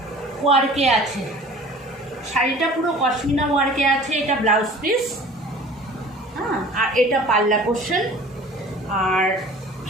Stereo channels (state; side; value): normal; both; correlation 0.45